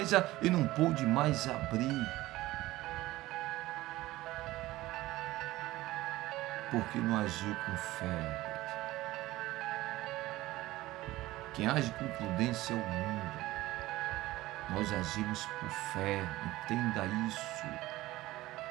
e não pôde mais abrir. Porque não agiu com fé. Quem age com prudência é o mundo. Nós agimos por fé, entenda isso.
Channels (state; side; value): quieter; left; 17.5 dB